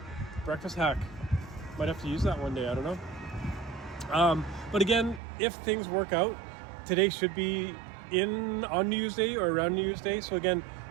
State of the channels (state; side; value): drops out; left; at 5.2 s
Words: Breakfast hack. Might have to use that one day, I don't know. But again, if things work out, today should be on New Year's Day or around New Year's Day. So again,